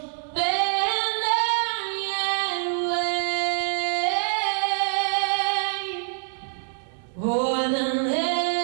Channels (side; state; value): left; silent; digital silence